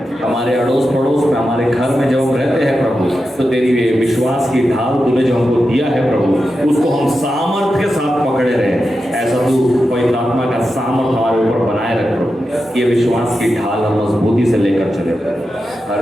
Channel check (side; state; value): both; normal; correlation 0.90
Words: हमारे अड़ोस पड़ोस में, हमारे घर में जब हम रहते हैं प्रभु, तो तेरी विश्वास की ढाल तूने जो हमको दिया है प्रभु, उसको हम सामर्थ्य के साथ पकड़े रहे। ऐसा तू पवित्र आत्मा का सामर्थ हमारे ऊपर बनाए रख प्रभु, ये विश्वास की ढाल हम मजबूती से लेकर चले प्रभु।